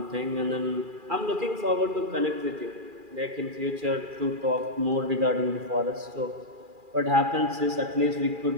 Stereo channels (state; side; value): late; left; 2.4 ms